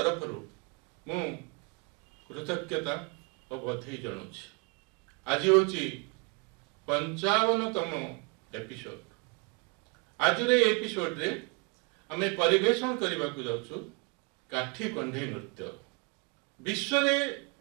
मु कृतज्ञता और बधाई जनाऊँ। आज हूँ 55तम एपिसोड। आज एपिसोड रे आम परिवेशन करने को जाऊँ काठी कंढे नृत्य। विश्व में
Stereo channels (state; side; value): quieter; left; 32.3 dB